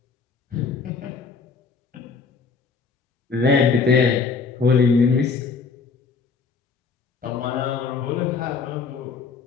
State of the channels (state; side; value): quieter; right; 5.0 dB